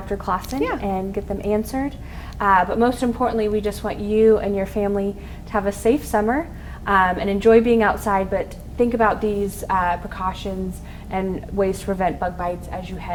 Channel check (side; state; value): both; identical; correlation 1.00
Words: Clawson and get them answered. But most importantly, we just want you and your family to have a safe summer and enjoy being outside, but think about these precautions and ways to prevent bug bites as you